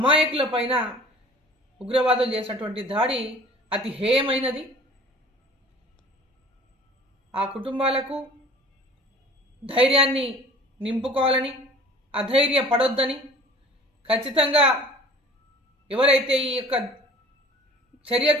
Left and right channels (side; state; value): both; normal; correlation 0.47